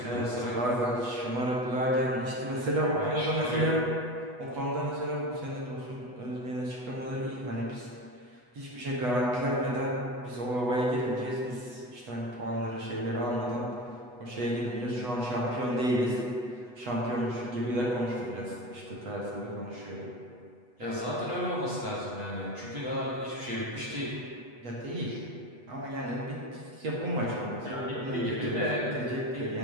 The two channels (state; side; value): late; left; 8.1 ms